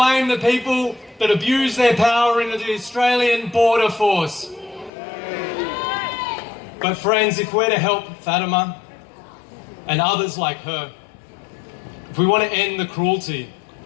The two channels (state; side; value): drops out; right; at 4.9 s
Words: the people that abuse their power in the Australian Border Force. But friends, if we're to help Fatima and others like her, if we want to end the cruelty,